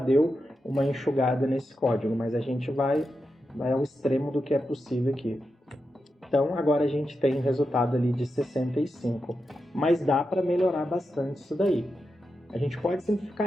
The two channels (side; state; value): both; normal; correlation 0.88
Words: uma enxugada nesse código, mas a gente vai ao extremo do que é possível aqui. Então, agora a gente tem um resultado ali de 65, mas dá para melhorar bastante isso daí. A gente pode